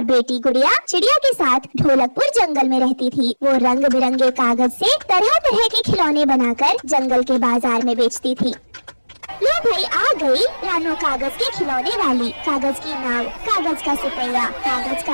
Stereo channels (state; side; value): inverted; both; correlation -1.00